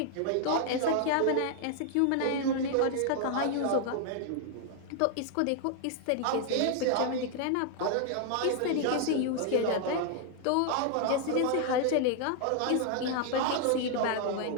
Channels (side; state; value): both; different; correlation 0.00